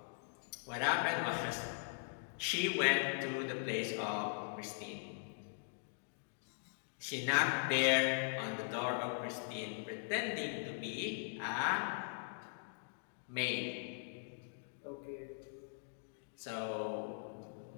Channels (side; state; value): right; silent; digital silence